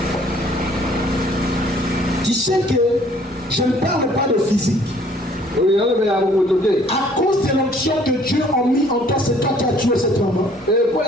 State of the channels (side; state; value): both; normal; correlation 0.58